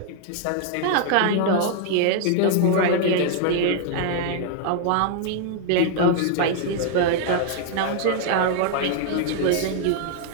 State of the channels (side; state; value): both; different; correlation 0.00